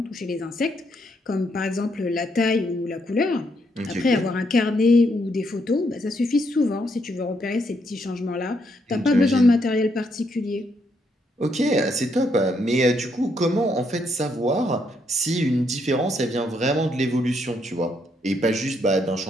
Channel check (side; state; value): both; normal; correlation 0.75